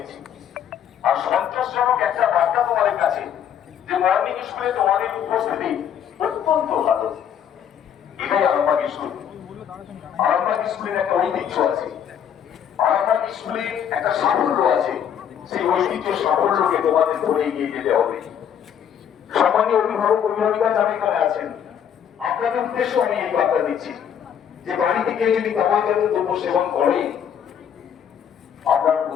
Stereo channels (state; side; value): quieter; right; 8.8 dB